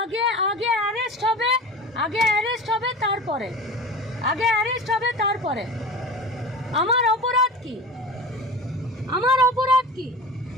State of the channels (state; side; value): normal; both; correlation 0.34